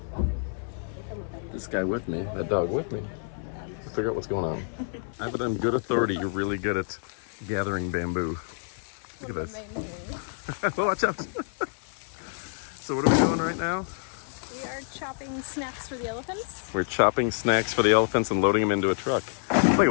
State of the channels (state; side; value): silent; right; digital silence